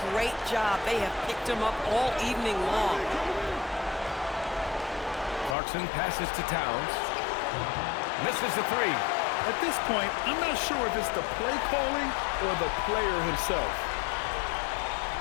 great job. They have picked him up all evening long. Clarkson passes to Towns. Misses the 3. At this point, I'm not sure if it's the play calling or the player himself.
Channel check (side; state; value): right; drops out; at 5.6 s